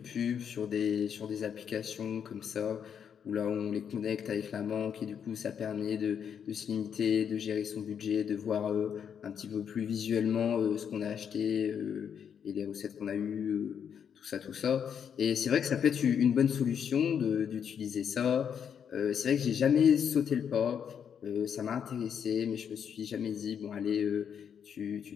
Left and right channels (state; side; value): quieter; right; 7.9 dB